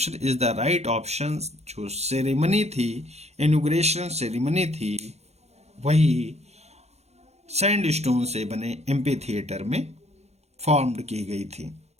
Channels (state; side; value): late; left; 0.31 ms